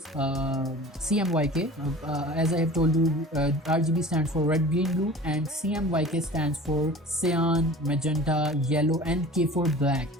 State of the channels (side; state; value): both; normal; correlation 0.41